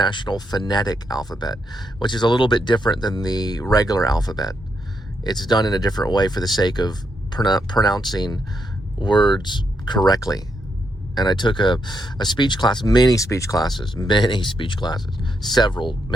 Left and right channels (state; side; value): normal; both; correlation 0.80